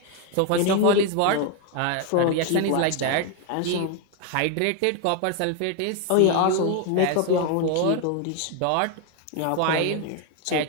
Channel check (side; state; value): both; different; correlation 0.01